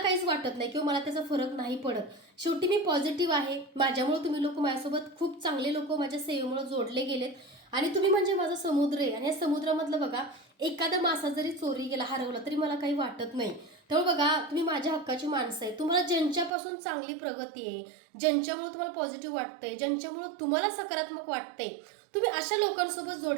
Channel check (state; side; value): drops out; left; at 16.5 s